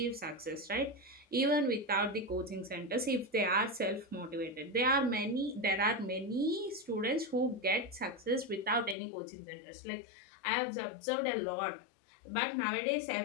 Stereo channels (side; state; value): right; drops out; at 9.0 s